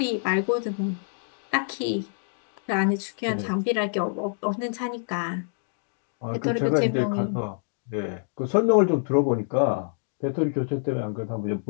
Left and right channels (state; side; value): silent; right; digital silence